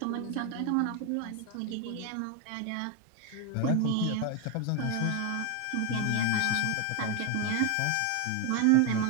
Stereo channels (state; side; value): different; both; correlation 0.01